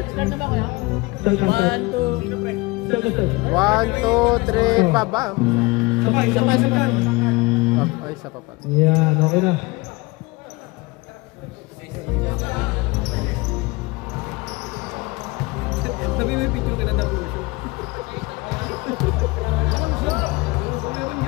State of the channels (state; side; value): quieter; right; 23.8 dB